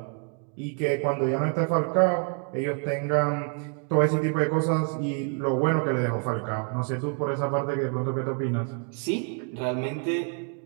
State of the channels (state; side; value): quieter; left; 38.2 dB